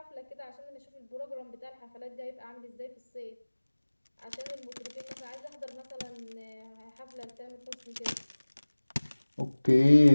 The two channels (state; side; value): inverted; both; correlation -1.00